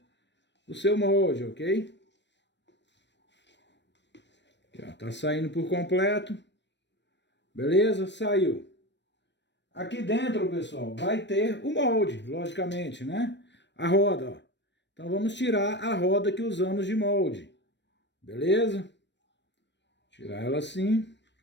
o seu molde, ok? Aqui, ó, tá saindo por completo. Beleza? Saiu. Aqui dentro, pessoal, vai ter o molde, logicamente, né? A roda, ó. Então vamos tirar a roda que usamos de molde. Beleza? Tirar ela assim.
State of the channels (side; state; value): right; late; 0.52 ms